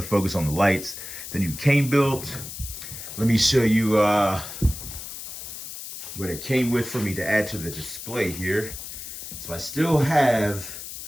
focus on the lights, the new KaneBilt. Let me show you what it came with for me to add to the display here. So I still have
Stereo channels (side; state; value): left; noise; hiss, 10 dB below the sound